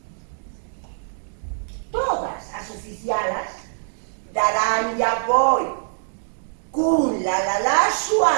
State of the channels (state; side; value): silent; left; digital silence